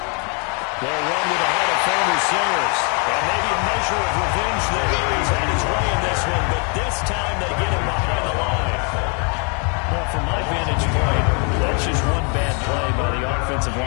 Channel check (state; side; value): quieter; right; 37.1 dB